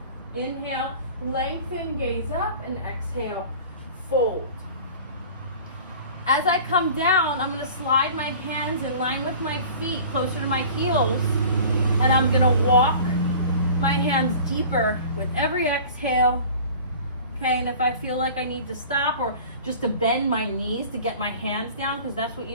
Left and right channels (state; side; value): inverted; both; correlation -0.42